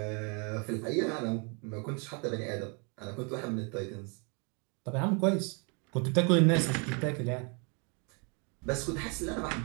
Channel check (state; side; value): quieter; left; 35.0 dB